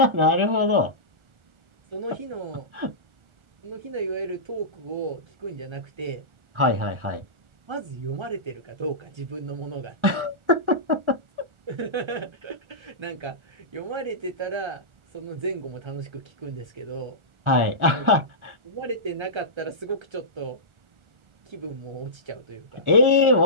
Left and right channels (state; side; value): late; left; 1.4 ms